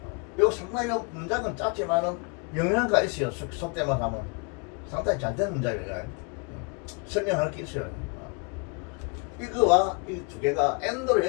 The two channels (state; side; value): quieter; right; 33.7 dB